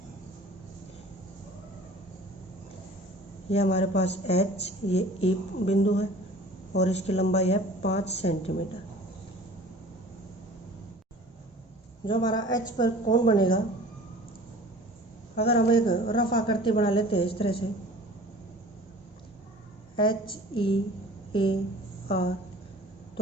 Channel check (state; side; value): normal; both; correlation 0.45